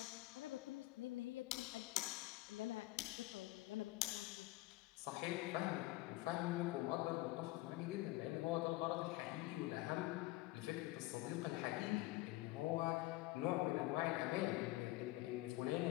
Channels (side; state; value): right; quieter; 19.0 dB